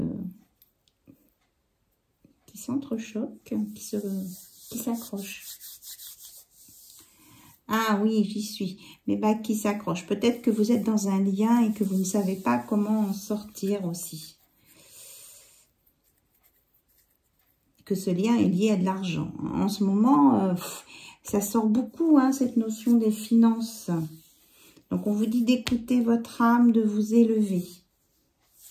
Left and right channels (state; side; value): identical; both; correlation 1.00